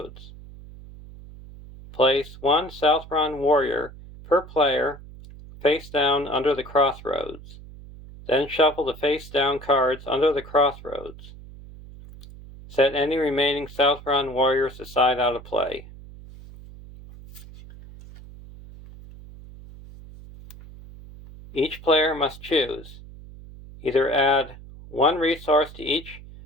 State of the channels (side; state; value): right; noise; hum, 17 dB below the sound